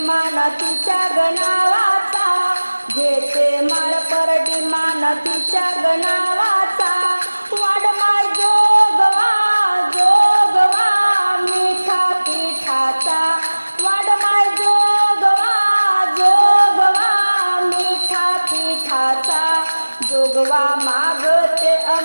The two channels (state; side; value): inverted; both; correlation -1.00